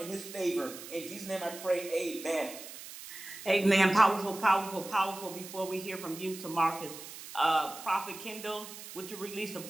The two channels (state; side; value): noise; right; hiss, 13 dB below the sound